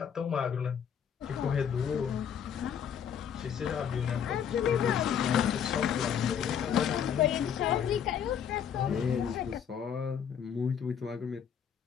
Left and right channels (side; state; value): right; quieter; 8.2 dB